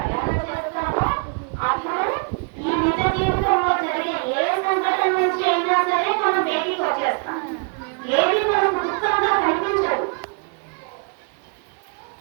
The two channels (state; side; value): quieter; left; 35.9 dB